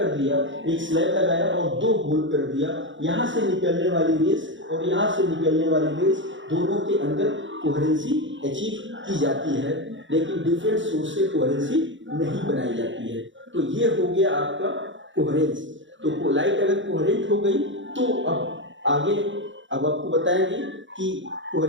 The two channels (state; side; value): late; left; 0.55 ms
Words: दिया, एक स्लैब लगाया और दो होल कर दिया। यहाँ से निकलने वाली रेस और यहाँ से निकलने वाली रेस, दोनों के अंदर कोहेरेंसी अचीव की जाती है, लेकिन डिफरेंट सोर्स से कोहेरेंसी नहीं बनाई जाती है। तो ये हो गया आपका कोहेरेंस। तो लाइट अगर कोहेरेंट हो गई तो अब आपको बताएंगे कि